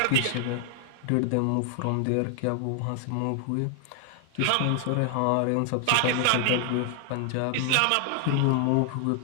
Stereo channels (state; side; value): different; both; correlation 0.00